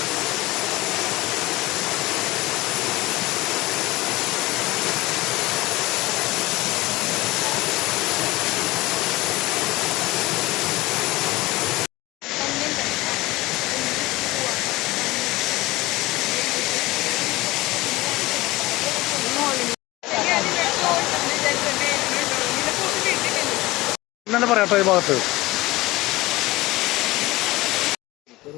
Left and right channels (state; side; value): quieter; right; 19.5 dB